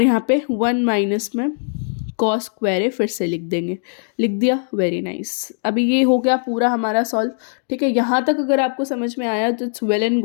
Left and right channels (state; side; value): silent; right; digital silence